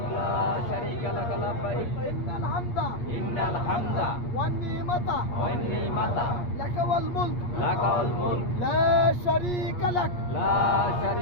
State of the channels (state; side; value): late; right; 8.4 ms